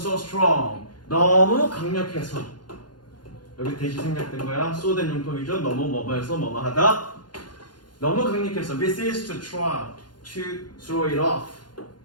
strong. 너무 강력해서. 여기 대시 생략된 거야. 쏘된 용법이죠. 너무 뭐뭐해서 뭐뭐하다. 너무 강력해서 we cease to try to throw it off.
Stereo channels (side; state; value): right; late; 0.71 ms